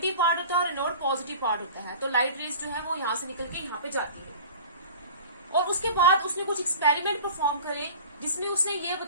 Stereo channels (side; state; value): both; inverted; correlation -0.40